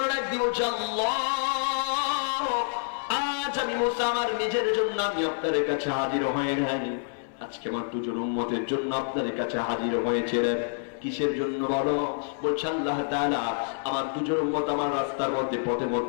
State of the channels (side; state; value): right; silent; 60 dB below the other